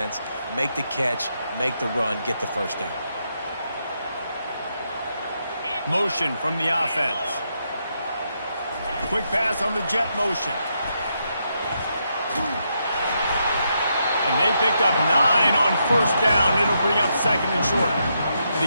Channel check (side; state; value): both; inverted; correlation -0.80